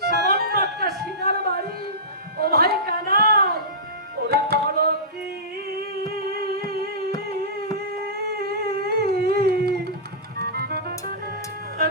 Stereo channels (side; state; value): both; normal; correlation -0.19